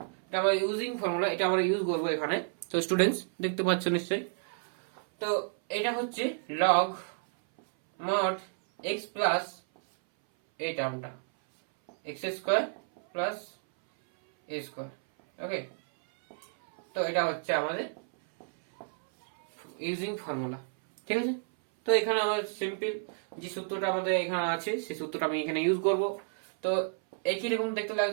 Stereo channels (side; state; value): left; silent; 57 dB below the other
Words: এটা আমরা ইউজিং ফর্মুলা এটা আমরা ইউজ করব এখানে। তো স্টুডেন্টস দেখতে পাচ্ছ নিশ্চয়ই, তো এটা হচ্ছে লগ মড এক্স প্লাস এই টার্মটা x square plus a square. Okay, তো এটা হচ্ছে আমাদের ইউজিং ফর্মুলা, ঠিক আছে। তো এখানে আমাদের সিম্পল যে সূত্রটা আমাদের এখানে আছে সেই সূত্রটা আমি এখানে ইউজ করব। তো একই রকম দেখতে